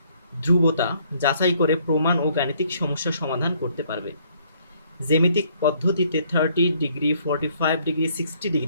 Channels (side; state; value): both; inverted; correlation -0.65